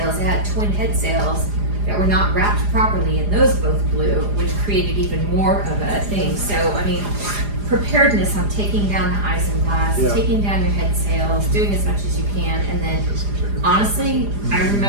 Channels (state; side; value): late; left; 4.9 ms